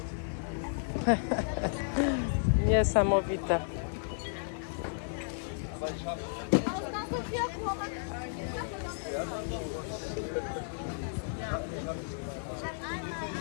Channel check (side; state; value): right; silent; digital silence